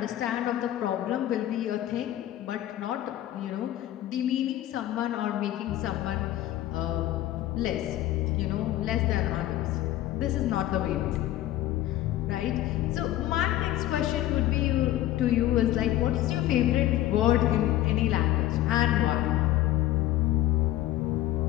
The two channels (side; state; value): right; quieter; 14.1 dB